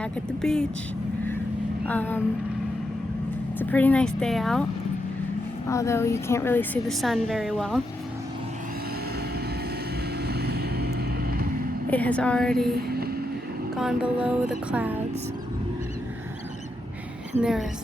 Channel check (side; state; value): both; normal; correlation 0.83